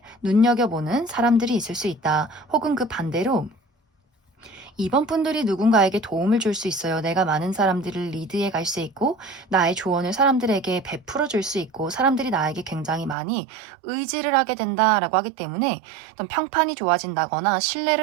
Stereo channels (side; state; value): left; drops out; at 13.2 s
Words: 눈여겨보는 사람들이 있을 수 있다. 혹은 그 반대로 이번 분들이 누군가에게 도움을 줄 수 있어요. 내가 많은 사람들을 리드해 갈 수 있고 나의 조언을 사람들에게 베풀어 줄 수 있고 사람들이 나에게 굉장히 많이 의지를 하게 된다라고 하기 때문에 어떤 평판이 좋아진다거나